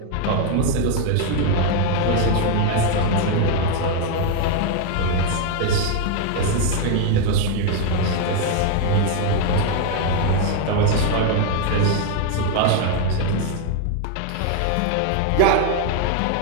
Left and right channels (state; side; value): different; both; correlation 0.01